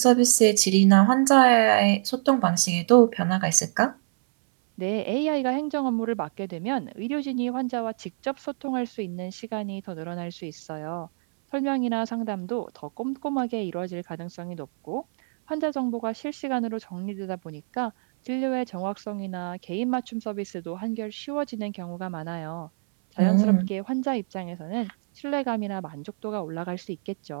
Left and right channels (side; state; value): left; silent; 61 dB below the other